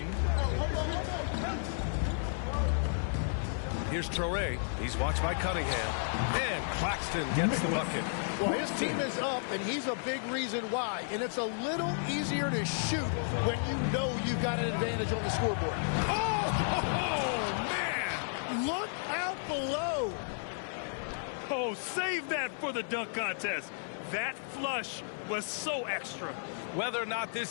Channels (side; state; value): right; silent; 56 dB below the other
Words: Here's Traore. He's watched by Cunningham. And Claxton gets the bucket. Well, his team is up, and he's a big reason why. And it's a little easier to shoot when you know you've got an advantage on the scoreboard. Oh, man! Look out below. Oh, save that for the dunk contest. That flush was so extra. Whether or not